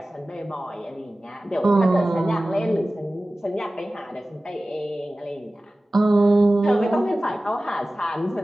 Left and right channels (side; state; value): both; normal; correlation 0.96